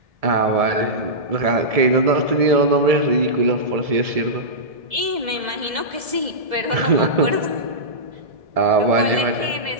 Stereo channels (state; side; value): late; left; 1.7 ms